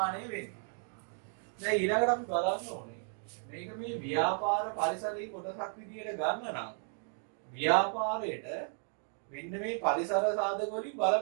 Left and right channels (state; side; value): silent; left; 55 dB below the other